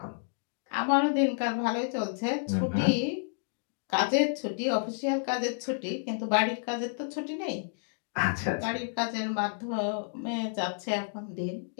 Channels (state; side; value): silent; right; digital silence